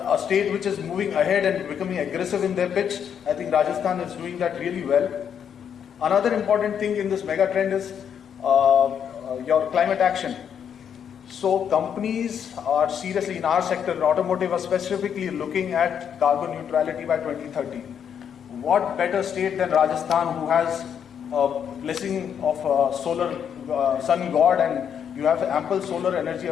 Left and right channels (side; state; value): right; quieter; 8.2 dB